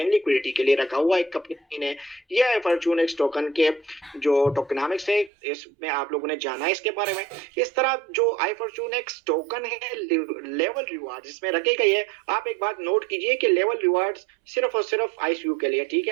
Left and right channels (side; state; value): left; drops out; at 5.3 s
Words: लिक्विडिटी के लिए रखा हुआ है कंपनी ने। यह iFortunex टोकन के जो टोकनामिक्स है, इसमें आप लोगों ने जाना है इसके बारे में। इस तरह जो iFortunex टोकन है, लेवल रिवार्ड इसमें रखे गए हैं। आप एक बात नोट कीजिए कि लेवल रिवार्ड्स सिर्फ और सिर्फ आईसीयू के लिए, ठीक